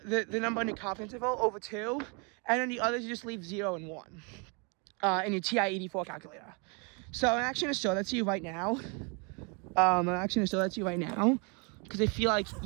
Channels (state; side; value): quieter; left; 33.9 dB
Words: number on your confidence interval over 2, and then the others you just leave 0 and 1 in your TI-84 calculator. So I'm actually going to show that to you right now. Because I feel like